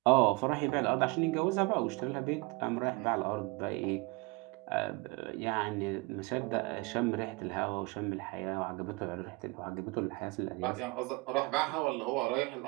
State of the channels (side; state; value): left; quieter; 25.7 dB